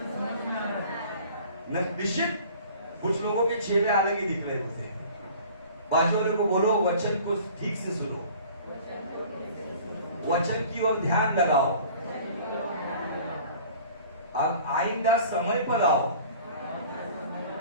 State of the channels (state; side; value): inverted; both; correlation -0.47